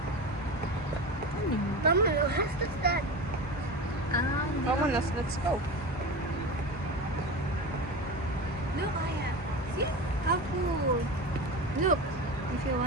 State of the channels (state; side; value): normal; both; correlation 0.27